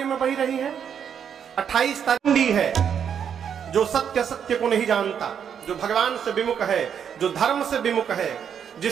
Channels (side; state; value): left; quieter; 8.0 dB